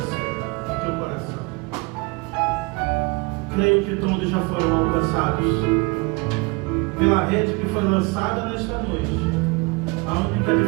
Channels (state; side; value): quieter; left; 27.4 dB